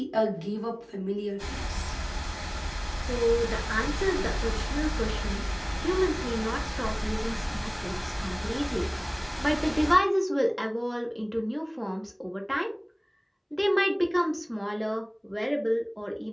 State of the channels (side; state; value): both; identical; correlation 1.00